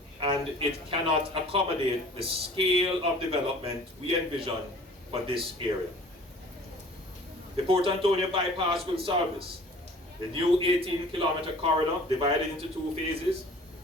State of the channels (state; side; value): normal; both; correlation 0.48